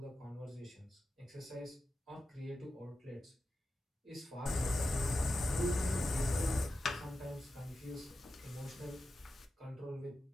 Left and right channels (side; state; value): both; normal; correlation 0.91